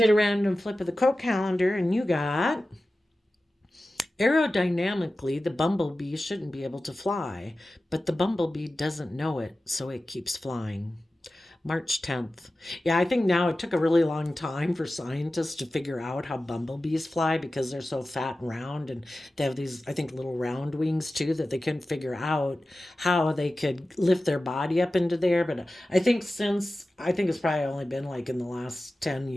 a random flip of the quote calendar, and you got: aerodynamically, the bumblebee shouldn't be able to fly, but the bumblebee doesn't know it, so it keeps flying. March 10th. Yeah, I think now it took a really long time for scientists to figure out how bumblebees fly because they're so fat and round, and they have these, I think, little round wings too, that they couldn't figure out how they could lift their body up into there. But I think it's probably only been like in the last 10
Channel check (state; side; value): normal; both; correlation 0.95